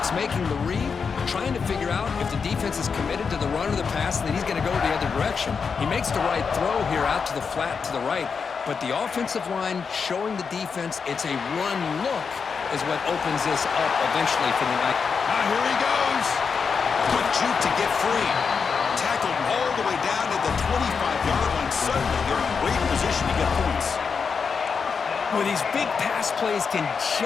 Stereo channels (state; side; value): quieter; right; 5.7 dB